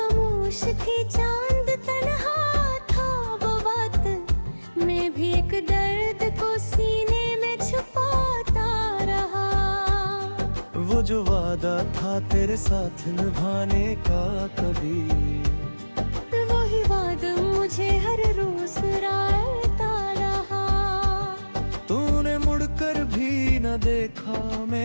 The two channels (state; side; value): inverted; both; correlation -1.00